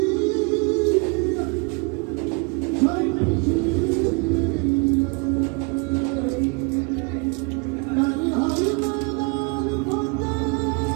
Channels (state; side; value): quieter; left; 32.2 dB